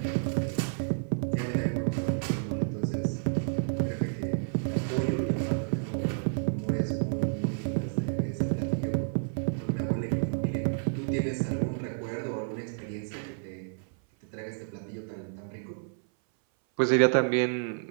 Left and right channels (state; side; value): silent; left; 57 dB below the other